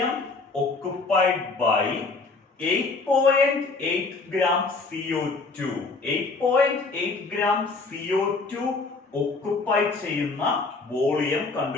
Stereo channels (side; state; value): right; quieter; 3.9 dB